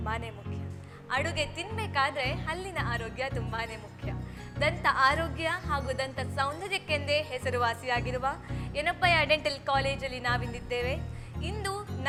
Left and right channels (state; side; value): identical; both; correlation 1.00